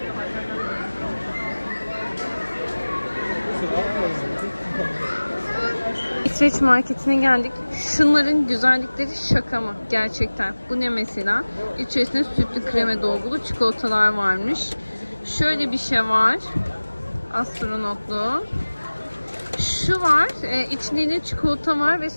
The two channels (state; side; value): inverted; both; correlation -1.00